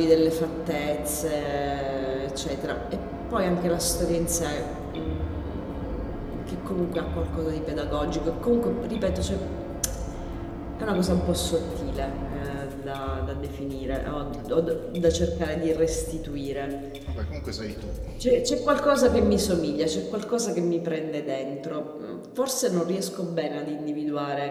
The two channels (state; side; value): identical; both; correlation 1.00